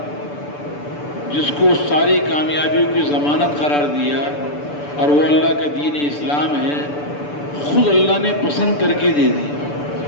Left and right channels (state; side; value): late; right; 6.9 ms